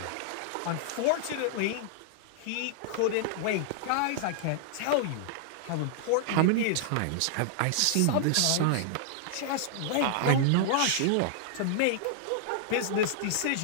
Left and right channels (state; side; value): different; both; correlation -0.01